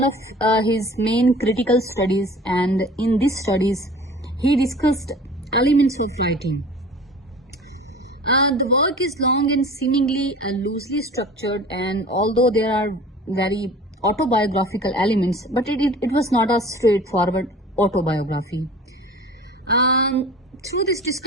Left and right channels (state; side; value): normal; both; correlation 0.42